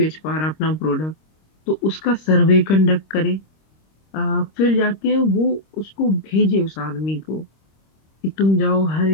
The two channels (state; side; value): late; right; 26 ms